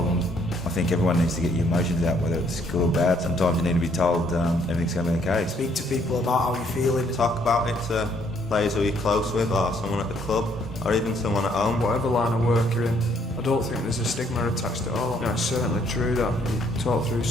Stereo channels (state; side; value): normal; both; correlation 0.67